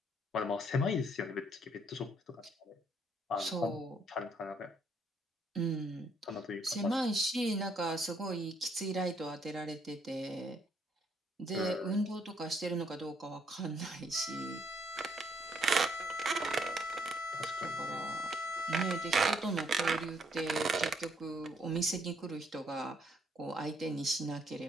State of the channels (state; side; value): normal; both; correlation 0.69